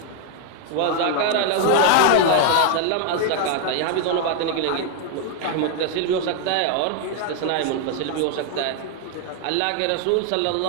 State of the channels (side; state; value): both; different; correlation 0.00